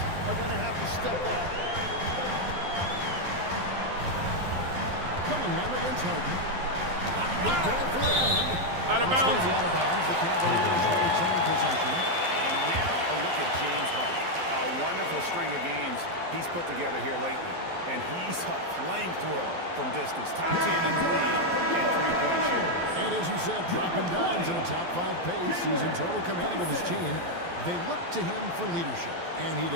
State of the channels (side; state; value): left; late; 12 ms